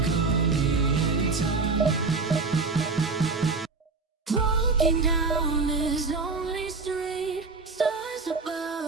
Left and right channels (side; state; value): left; quieter; 4.1 dB